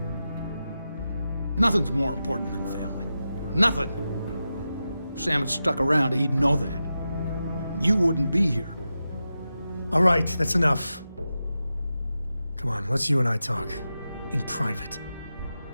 Nothing's more important than family. Nothing. If Sam had stuck around, he'd know that. You wouldn't be here. All right, that's enough. Come on, let's you and I talk. In private.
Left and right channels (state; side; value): inverted; both; correlation -0.91